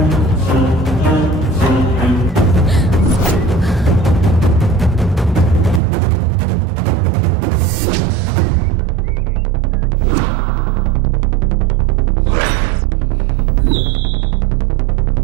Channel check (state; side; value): drops out; left; at 5.8 s